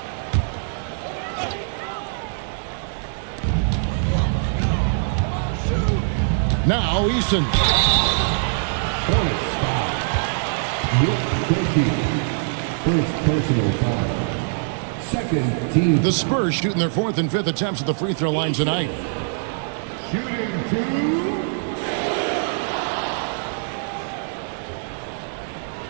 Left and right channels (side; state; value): left; silent; 64 dB below the other